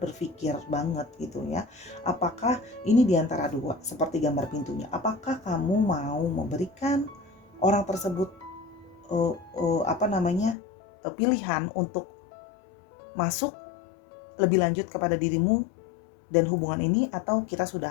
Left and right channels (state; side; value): drops out; right; at 10.6 s